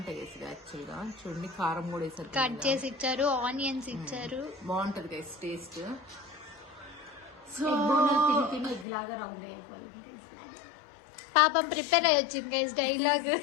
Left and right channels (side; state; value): right; drops out; at 8.8 s